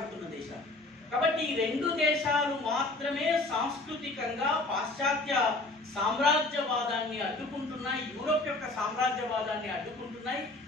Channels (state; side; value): quieter; right; 3.0 dB